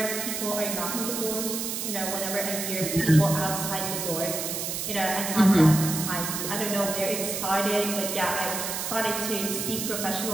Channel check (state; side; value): noise; right; hiss, 3 dB below the sound